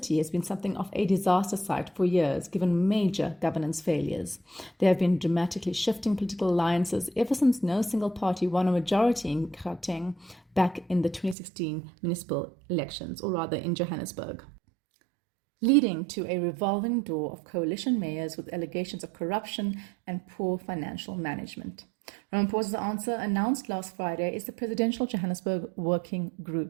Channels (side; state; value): left; drops out; at 11.4 s